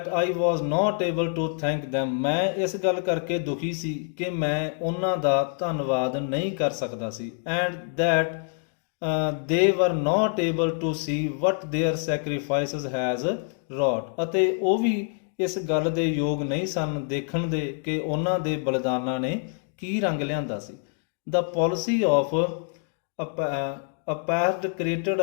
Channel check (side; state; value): right; silent; 61 dB below the other